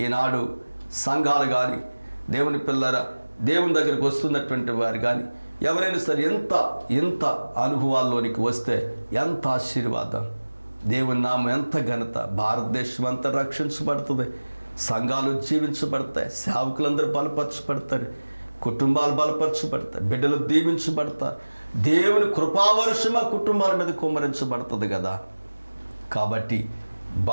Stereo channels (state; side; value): inverted; both; correlation -1.00